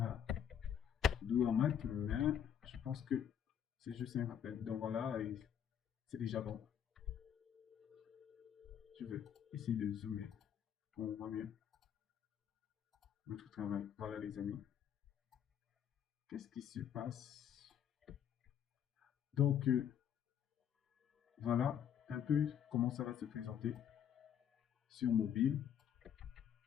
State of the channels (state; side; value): quieter; right; 9.1 dB